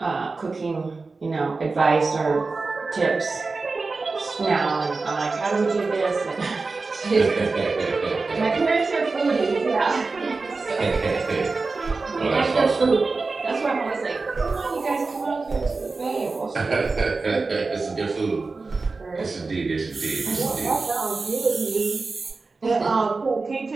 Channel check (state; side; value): quieter; left; 3.9 dB